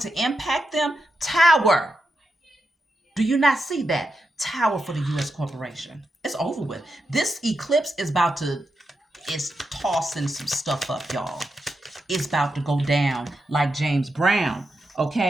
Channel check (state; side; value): normal; both; correlation 0.86